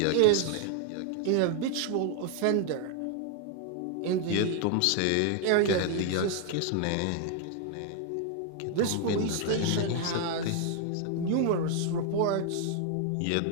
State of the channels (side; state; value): both; different; correlation 0.00